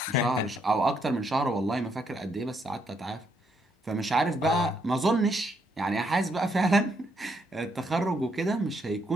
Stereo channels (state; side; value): normal; both; correlation 0.74